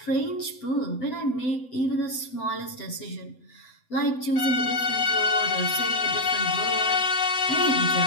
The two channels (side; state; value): right; late; 7.9 ms